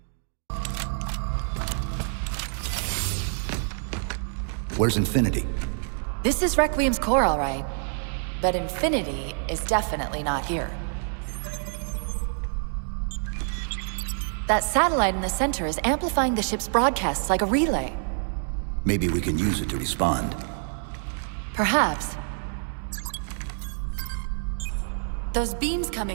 Where's Infinity? This is Requiem's core, all right. But Infinity is definitely not here. That satellite in the center is amplifying the ship's broadcasts like a relay. Maybe we can use it to respond. Perhaps. Those beams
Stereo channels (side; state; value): left; silent; digital silence